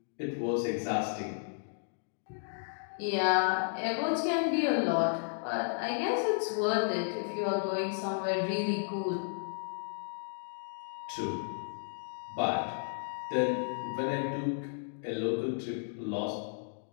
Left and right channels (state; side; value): silent; right; digital silence